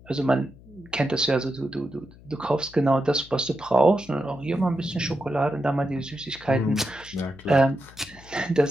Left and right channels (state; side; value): noise; left; hum, 22 dB below the sound